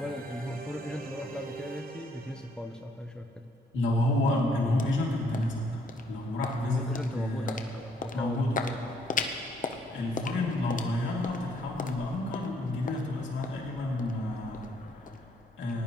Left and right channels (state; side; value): normal; both; correlation 0.67